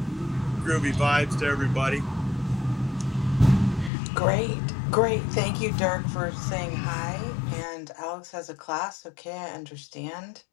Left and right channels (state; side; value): drops out; right; at 3.9 s